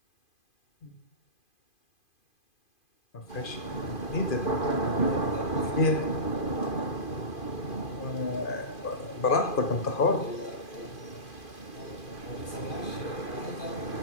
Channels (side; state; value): right; late; 2.5 ms